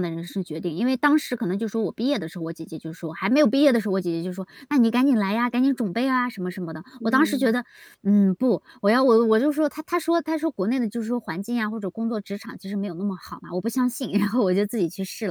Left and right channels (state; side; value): identical; both; correlation 1.00